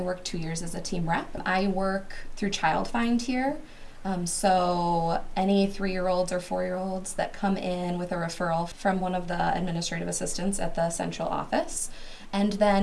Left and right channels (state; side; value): identical; both; correlation 1.00